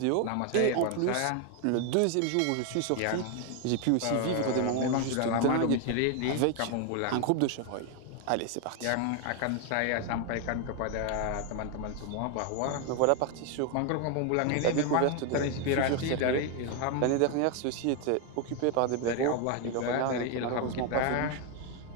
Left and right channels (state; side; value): different; both; correlation 0.01